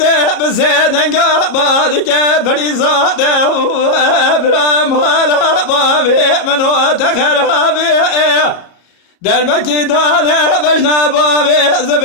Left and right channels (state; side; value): late; right; 33 ms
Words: بسیدنگا بادی که بریزاده برام حالا باوی منو تخرابی در مکی دانه بجنا باوی